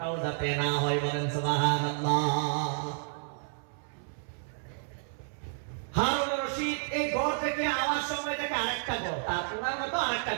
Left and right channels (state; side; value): silent; left; 57 dB below the other